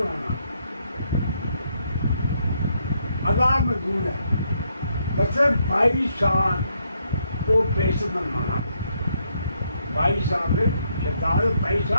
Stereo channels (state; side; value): inverted; both; correlation -0.75